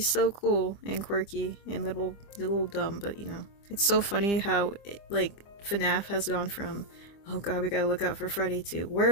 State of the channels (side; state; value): right; late; 25 ms